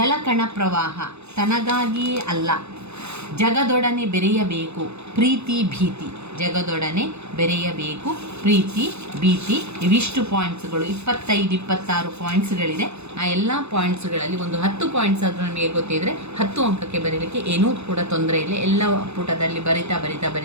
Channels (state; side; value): late; left; 0.81 ms